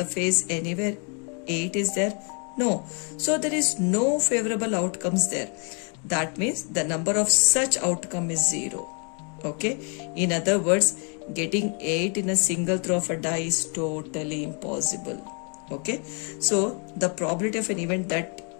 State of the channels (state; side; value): quieter; right; 38.5 dB